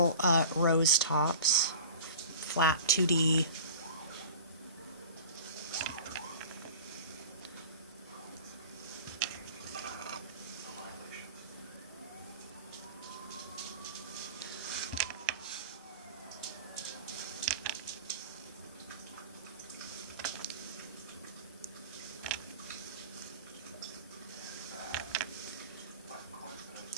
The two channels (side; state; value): both; inverted; correlation -0.39